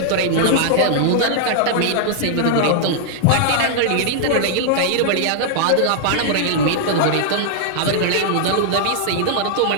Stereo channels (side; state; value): both; different; correlation -0.01